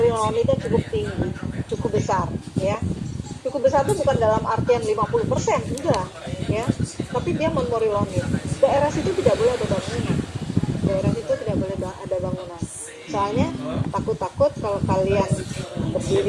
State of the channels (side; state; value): both; identical; correlation 1.00